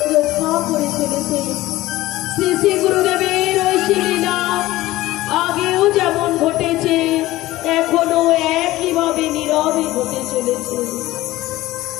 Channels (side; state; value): right; quieter; 17.0 dB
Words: রক্ষা করে চলেছে। শ্রী শ্রী গুরুদেবের ওই লীলা আগেও যেমন ঘটেছে, এখনো একইভাবে নীরবে ঘটে চলেছে।